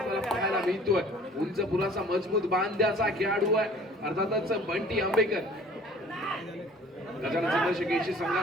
पाहायला मिळतोय. उंच पुराचा मजबूत बांध्याचा खेळाडू आहे. अर्थातच बंटी आंबेकर गजानन संघर्ष केशी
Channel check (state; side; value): normal; both; correlation 0.50